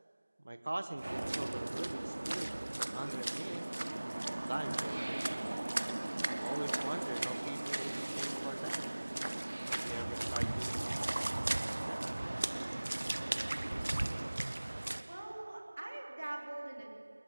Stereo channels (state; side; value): inverted; both; correlation -1.00